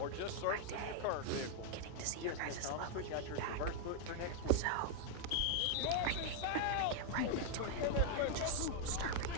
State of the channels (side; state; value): both; different; correlation 0.00